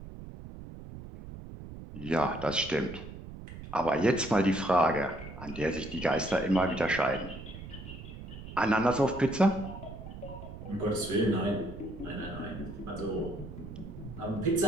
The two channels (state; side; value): noise; right; rumble, 12 dB below the sound